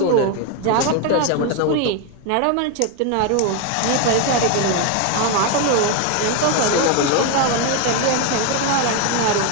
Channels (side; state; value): both; different; correlation 0.01